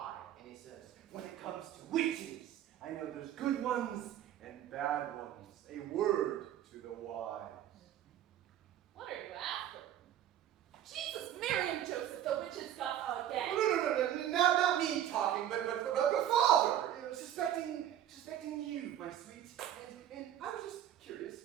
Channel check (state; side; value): quieter; left; 11.2 dB